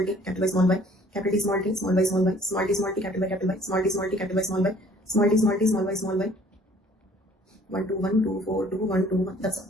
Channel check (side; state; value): both; normal; correlation 0.55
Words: t, capital Y, small y, capital T, small t, small y, small y, small t, small t, capital Y, capital Y, small t, small t, capital Y, small y, small t, small t, small y, small y, 1 2 1 2 4 2 1 2 1. That's